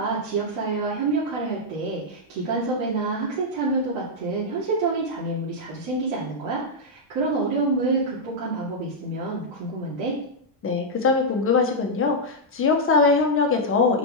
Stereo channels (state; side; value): normal; both; correlation -0.05